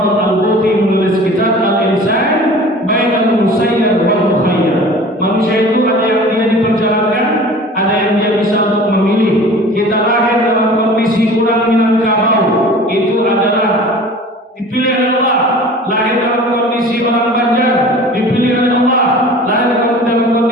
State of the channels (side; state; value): both; normal; correlation 0.42